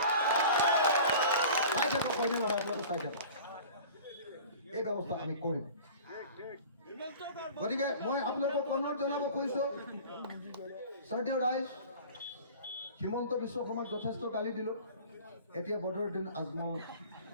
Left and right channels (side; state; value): both; inverted; correlation -0.41